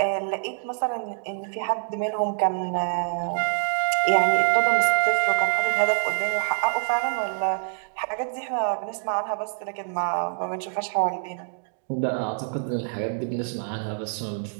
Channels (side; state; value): left; silent; digital silence